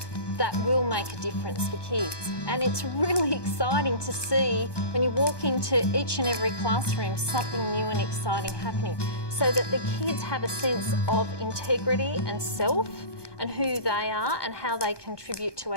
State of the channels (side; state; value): right; late; 1.2 ms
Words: that will make a difference for kids. And it's really exciting to see when you walk into each and every classroom something new and exciting happening, so that the kids have a sense of integrity and self and who they are and how they contribute to